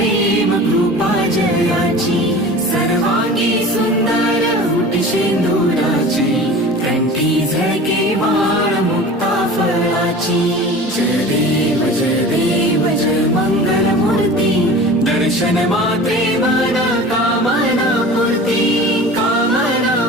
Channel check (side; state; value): both; normal; correlation 0.38